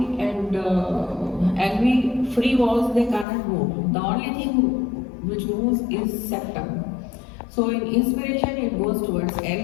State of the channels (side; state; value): right; drops out; at 3.2 s